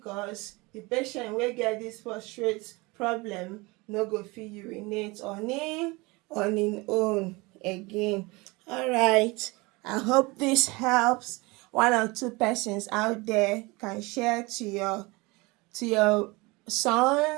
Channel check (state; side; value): quieter; left; 24.5 dB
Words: the patient wey get this prostate problem no go fit urinate on im own again. Alright, I hope this helps. One or two persons out there can share to your